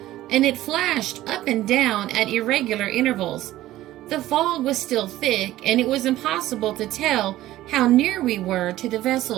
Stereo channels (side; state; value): left; quieter; 15.1 dB